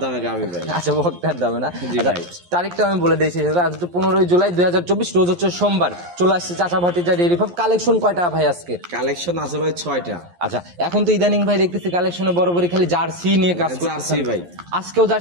দামে গাবি ভাই। আচ্ছা, বকনার দামে না? জি ভাই। তারিখটা আমি বলে দিয়েছি, আজ 15 জুলাই 2024, রোজ হচ্ছে সোমবার। চলে আসছে চাচা ভাতিজা ডেইরি ফার্ম। কালেকশন কয়টা ভাই আজকে? কালেকশন আছে ভাই 6টা। আচ্ছা, এখন তো ইদানিং ভাই দেখতেছি কালেকশনে বরাবরই খালি জার্সি নিয়ে কাজ করতেছেন। জার্সি ভাই, আজকেও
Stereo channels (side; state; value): left; late; 11 ms